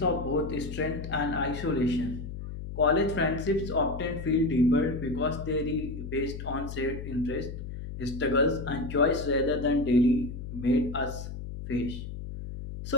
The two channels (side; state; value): left; noise; hum, 8 dB below the sound